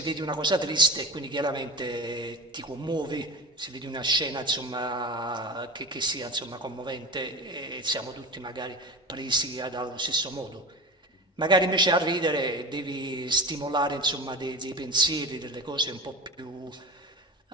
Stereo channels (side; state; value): both; normal; correlation 0.29